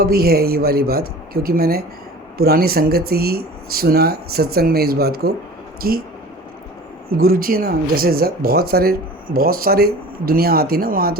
भी है ये वाली बात, क्योंकि मैंने पुरानी संगत से ही सुना सत्संग में इस बात को, कि गुरुजी ना जैसे बहुत सारे दुनिया आती ना वहाँ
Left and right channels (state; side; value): normal; both; correlation 0.41